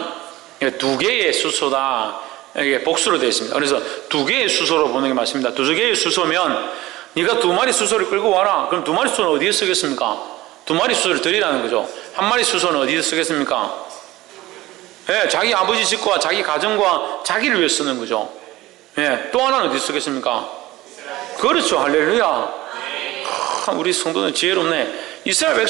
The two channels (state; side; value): quieter; left; 17.7 dB